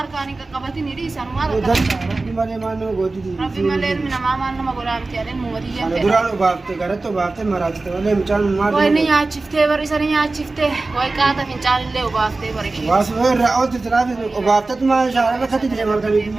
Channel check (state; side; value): quieter; left; 3.4 dB